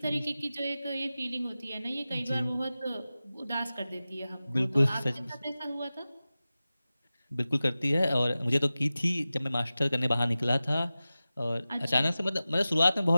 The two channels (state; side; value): inverted; both; correlation -0.95